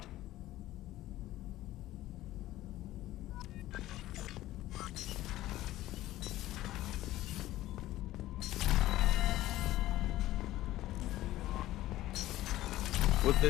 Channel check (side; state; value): right; quieter; 15.4 dB